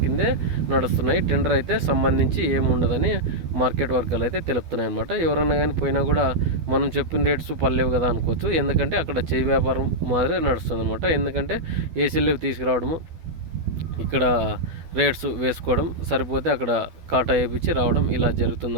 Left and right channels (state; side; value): late; left; 12 ms